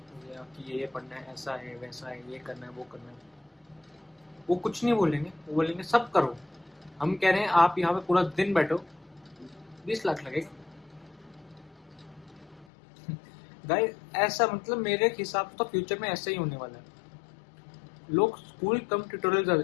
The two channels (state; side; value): drops out; right; at 12.7 s